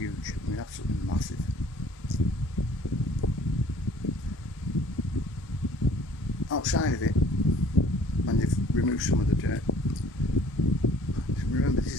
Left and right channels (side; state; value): both; normal; correlation 0.54